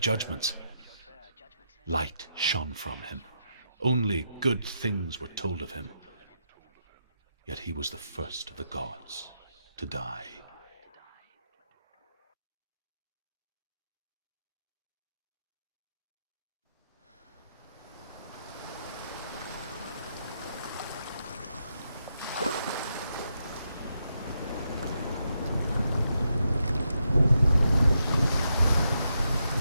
Light shone from him. Only good things were told of him. Yet he was the first of the gods to die.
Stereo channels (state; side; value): inverted; both; correlation -0.82